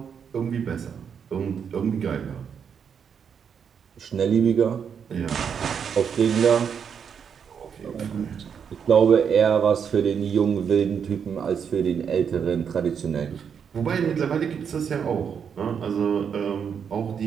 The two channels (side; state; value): left; quieter; 7.2 dB